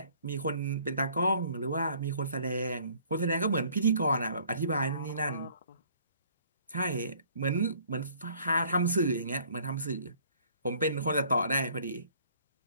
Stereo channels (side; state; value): both; inverted; correlation -0.58